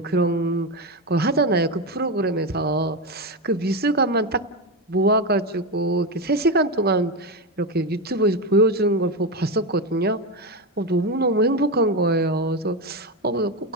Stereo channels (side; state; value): both; normal; correlation 0.13